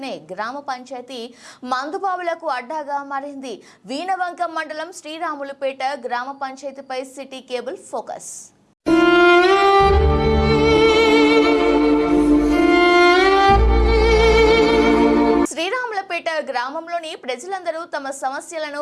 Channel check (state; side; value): identical; both; correlation 1.00